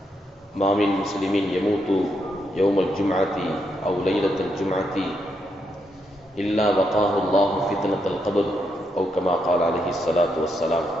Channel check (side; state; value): both; normal; correlation 0.79